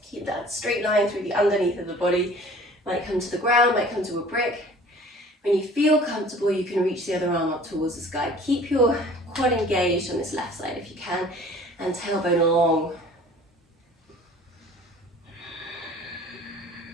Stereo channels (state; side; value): normal; both; correlation 0.48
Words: Keep that straight line through the underneath of the body. Might come to the ground, might come to a brick. When you feel comfortable, you can reach the other arm up towards the sky. Keep your quad engaged on this left side if you can, and tailbone long.